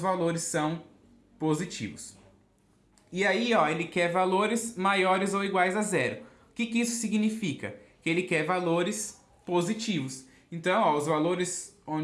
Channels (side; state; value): both; identical; correlation 1.00